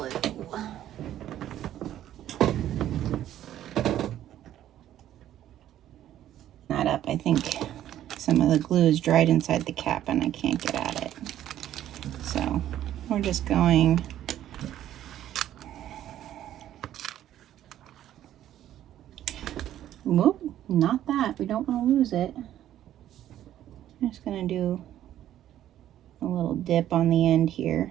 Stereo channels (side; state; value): left; quieter; 12.0 dB